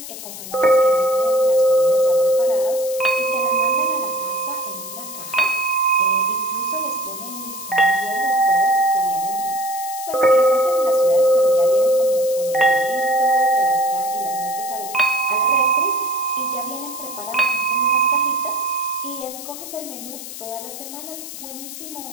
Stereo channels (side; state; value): left; noise; hiss, 11 dB below the sound